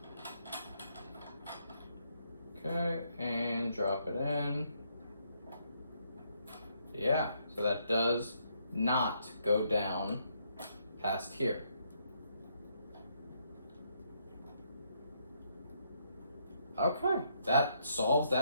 Okay, and drop it in. Yeah, so that does not go down past here. Okay, that solves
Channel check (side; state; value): both; inverted; correlation -0.73